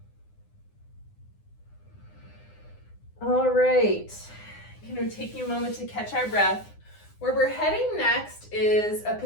All right, taking a moment to catch our breath. Where we're heading next is a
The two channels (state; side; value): late; right; 9.8 ms